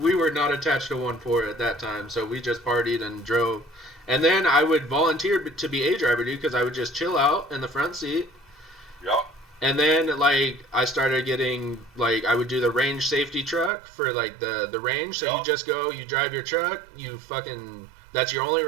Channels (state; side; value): drops out; left; at 13.7 s